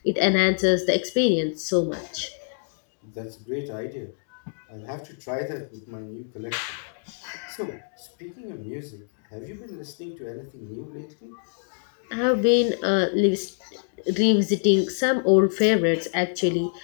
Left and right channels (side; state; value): right; silent; 61 dB below the other